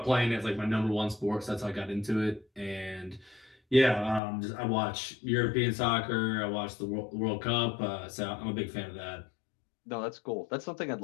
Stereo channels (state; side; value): drops out; right; at 4.2 s